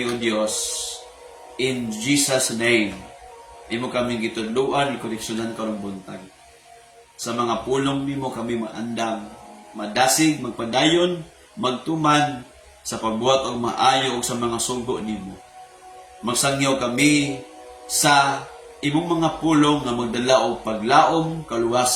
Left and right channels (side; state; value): both; identical; correlation 1.00